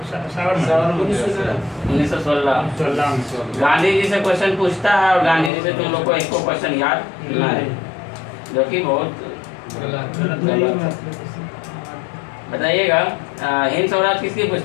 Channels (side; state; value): right; drops out; at 5.5 s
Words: 1916। गांधी जी से क्वेश्चन पूछता है और गांधी जी से तुम लोग को एक को क्वेश्चन याद ना है, जो कि बहुत गलत है। बताइएगा, हिंद स्वराज किसकी